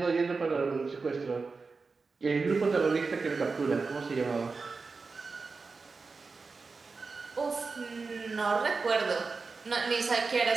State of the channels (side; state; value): left; quieter; 4.4 dB